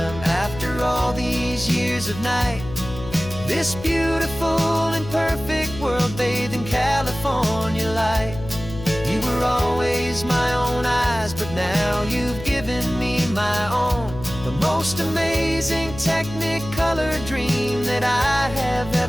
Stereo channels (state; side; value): noise; left; hum, 12 dB below the sound